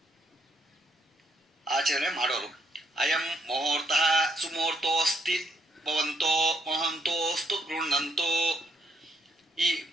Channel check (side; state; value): both; normal; correlation 0.73